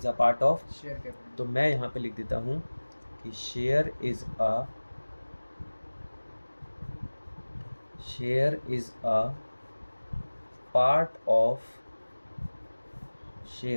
a part of share capital. तो मैं यहाँ पे लिख देता हूँ कि share is a part of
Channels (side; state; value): both; inverted; correlation -1.00